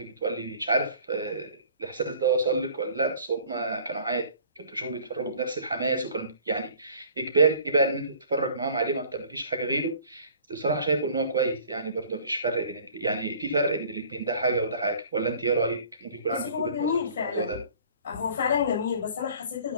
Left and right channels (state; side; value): inverted; both; correlation -0.50